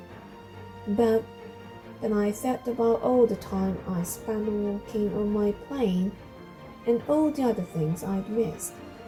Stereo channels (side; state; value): both; identical; correlation 1.00